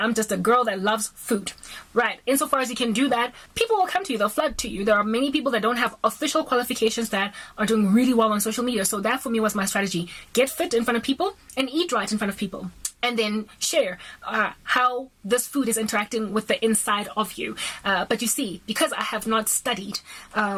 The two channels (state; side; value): identical; both; correlation 1.00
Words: just a girl that loves food. Right, insofar as you can do that, people will come to you, they'll flood to you. There are many people that don't have official qualifications that are doing really well on social media. So that for me was my strategy. Get fit in front of people and eat right in front of people. And then share how this food is interacting with the inside of you. But you see, because I have not studied